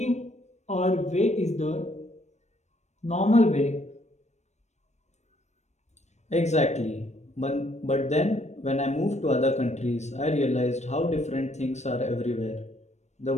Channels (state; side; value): late; right; 0.33 ms